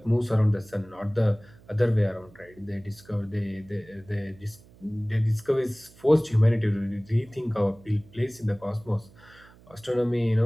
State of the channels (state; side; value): noise; right; hum, 25 dB below the sound